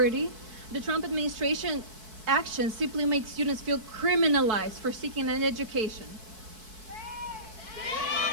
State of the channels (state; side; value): late; left; 4.6 ms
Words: the Trump administration actions simply make students feel criminalized for seeking an education.